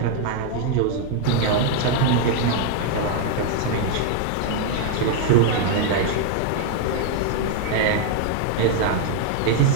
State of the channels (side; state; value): both; different; correlation 0.00